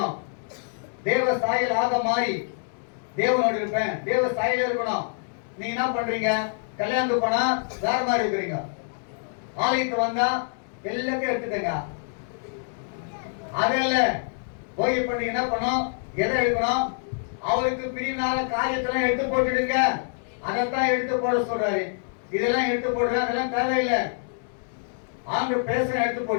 தேவ சாயல் ஆக மாறி தேவனோடு இருப்பேன், தேவ சாயல இருக்கணும். நீங்க என்ன பண்றீங்க, கல்யாணத்துக்கு போனா வேற மாதிரி இருக்கிறீங்க, ஆலயத்துக்கு வந்தா எல்லாத்தையும் எடுத்துட்டங்க. அதல்ல போய் இப்ப நீங்க என்ன பண்ணணும், எதை எடுக்கணும், அவருக்கு பிரிவினால காரியத்தெல்லாம் எடுத்து போட்டுடுங்க. அதைத்தான் எடுத்து போட சொல்றாரு. இதெல்லாம் எடுத்து போடுற, அதெல்லாம் தேவையில்லை. ஆண்டு பேச எடுத்து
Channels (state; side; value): silent; right; digital silence